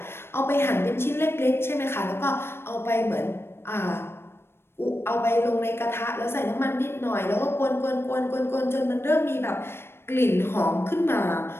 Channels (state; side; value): late; right; 0.12 ms